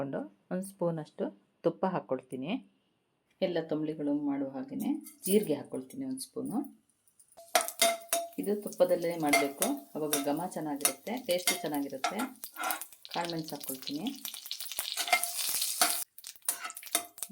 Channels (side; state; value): both; identical; correlation 1.00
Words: ಒಂದು ಸ್ಪೂನಷ್ಟು ತುಪ್ಪ ಹಾಕ್ಕೊಳ್ತೀನಿ. ಎಲ್ಲ ತಂಬಳಿಗಳು ಮಾಡುವ ಹಾಗೆಯೇ ಜೀರಿಗೆ ಹಾಕ್ಕೊಳ್ತೀನಿ ಒಂದು ಸ್ಪೂನು. ಇದು ತುಪ್ಪದಲ್ಲೇ ಮಾಡಬೇಕು, ಅವಾಗ ಘಮ ಚೆನ್ನಾಗಿರುತ್ತೆ, ಟೇಸ್ಟು ಚೆನ್ನಾಗಿರುತ್ತೆ. ಕಾಳುಮೆಣಸು ಹಾಕ್ಕೊಳ್ತೀನಿ.